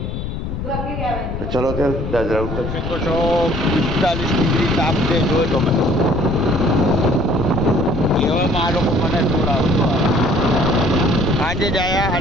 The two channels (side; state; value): left; noise; rumble, 5 dB below the sound